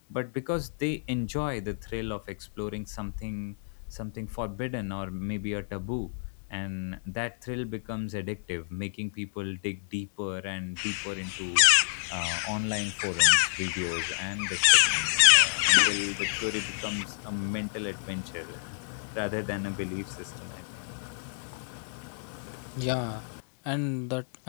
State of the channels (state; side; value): silent; right; digital silence